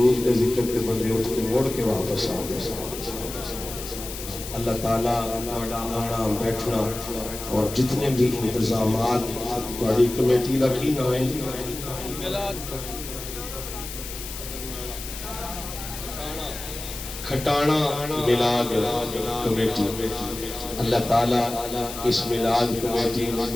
تے ذکر تے بندے اٹھ کے مڑ کے واپس آ گئے. اللہ تعالیٰ تھوڑا آنا بیٹھنا اور جتنے بھی انتظامات تھوڑی کمیٹی کا کی نام ہے کھٹانا میلاد کمیٹی. اللہ تعالیٰ اس میلاد کمیٹی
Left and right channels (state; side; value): noise; left; hiss, 10 dB below the sound